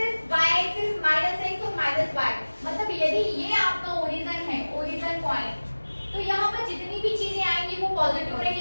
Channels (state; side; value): inverted; both; correlation -1.00